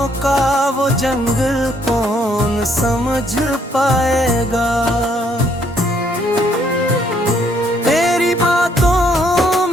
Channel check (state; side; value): normal; both; correlation 0.68